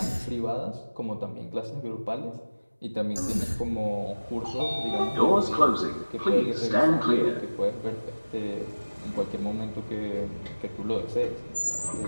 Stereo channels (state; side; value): inverted; both; correlation -1.00